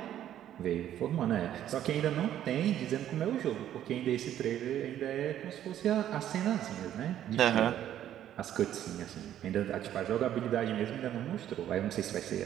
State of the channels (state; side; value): quieter; left; 11.3 dB